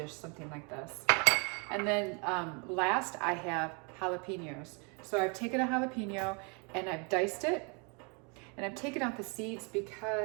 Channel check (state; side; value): quieter; left; 34.0 dB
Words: something like this. And then last, I have jalapenos. So I've taken a jalapeno and I've diced it, and I've taken out the seeds